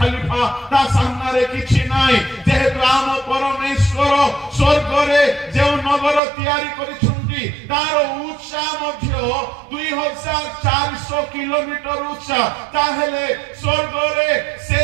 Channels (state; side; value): drops out; left; at 6.2 s